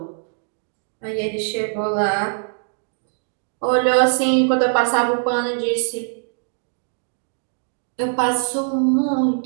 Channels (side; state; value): left; silent; digital silence